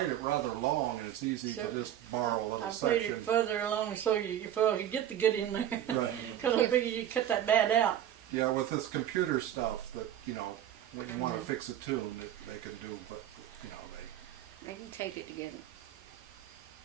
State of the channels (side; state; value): left; quieter; 11.1 dB